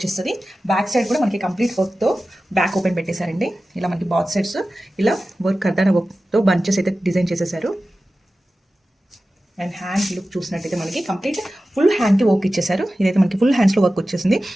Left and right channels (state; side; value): normal; both; correlation 0.95